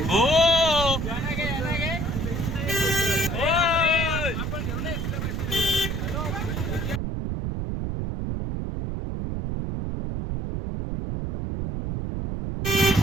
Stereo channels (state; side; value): noise; right; rumble, 2 dB below the sound